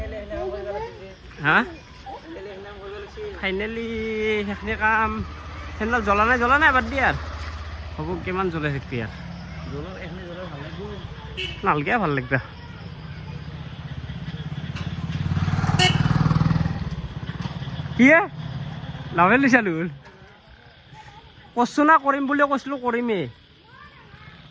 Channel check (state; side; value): identical; both; correlation 1.00